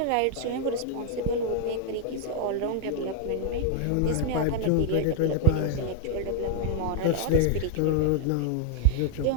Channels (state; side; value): different; both; correlation 0.00